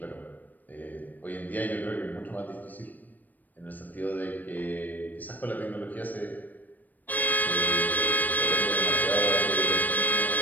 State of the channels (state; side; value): late; right; 0.084 ms